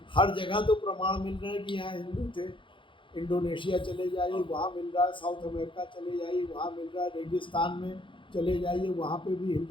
हर जगह तो प्रमाण मिल रहा है कि यहाँ हिंदू थे। इंडोनेशिया चले जाइए, वहाँ मिल रहा है, साउथ अमेरिका चले जाइए, वहाँ मिल रहा है, रेगिस्तान में चले जाइए, वहाँ पे भी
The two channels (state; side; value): late; right; 0.24 ms